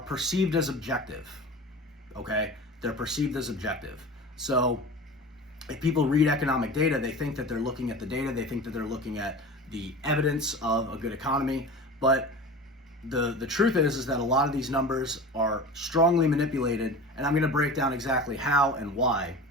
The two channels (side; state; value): both; normal; correlation 0.34